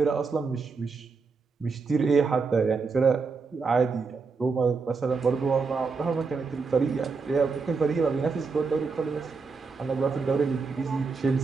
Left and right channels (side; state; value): left; quieter; 4.7 dB